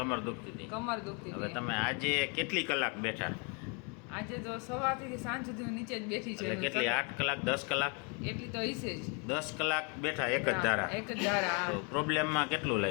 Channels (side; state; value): right; quieter; 34.8 dB